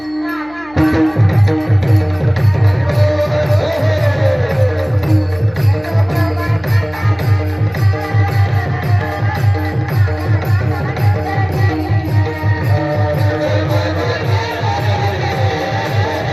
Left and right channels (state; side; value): noise; left; hum, 25 dB below the sound